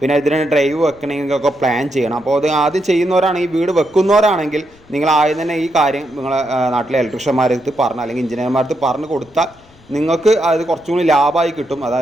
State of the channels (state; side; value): noise; left; rumble, 29 dB below the sound